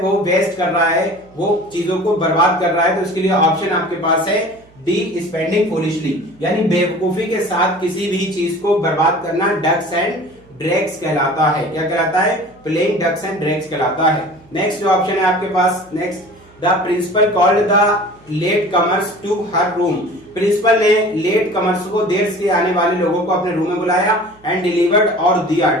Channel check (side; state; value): right; noise; hum, 28 dB below the sound